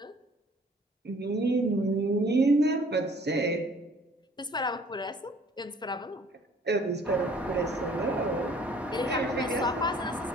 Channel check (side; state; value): both; normal; correlation 0.55